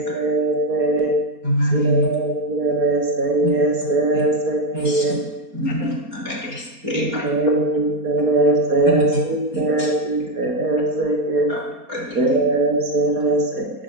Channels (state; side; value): late; left; 4.3 ms